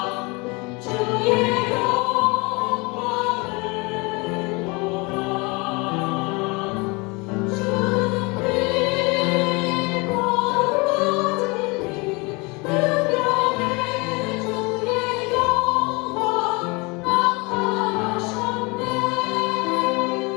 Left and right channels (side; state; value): right; quieter; 27.5 dB